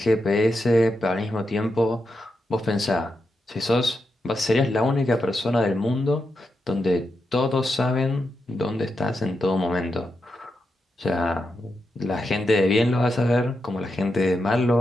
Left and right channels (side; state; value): both; normal; correlation 0.86